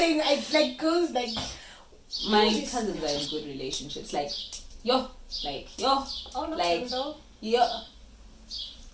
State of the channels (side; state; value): both; identical; correlation 1.00